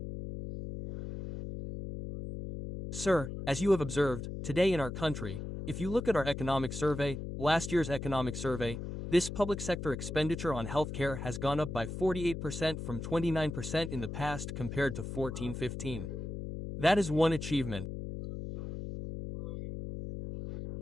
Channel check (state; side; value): noise; left; hum, 6 dB below the sound